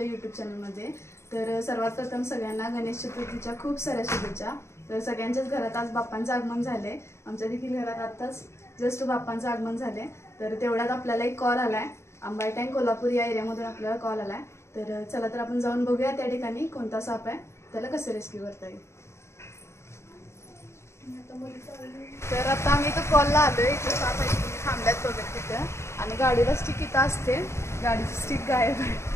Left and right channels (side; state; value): right; late; 0.13 ms